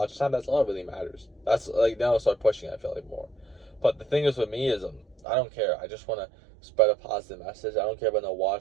time, that's all that really matters. That's like now I start pushing. I feel like more. But the thing is with me is I don't care. I just want to spread a positive message. I don't care about no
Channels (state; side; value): drops out; left; at 5.2 s